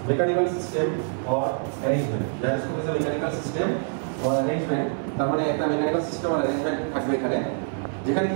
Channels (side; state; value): left; silent; 61 dB below the other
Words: mechanical system or arrangement. Gyroscope is a mechanical system or arrangement, তার মানে একটা মেকানিক্যাল সিস্টেম অর অ্যারেঞ্জমেন্ট থাকবে এখানে, যেখানে